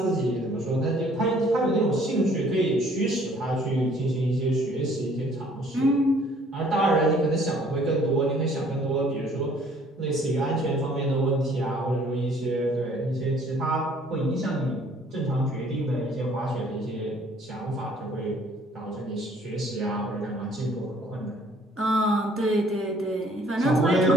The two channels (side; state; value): both; normal; correlation 0.58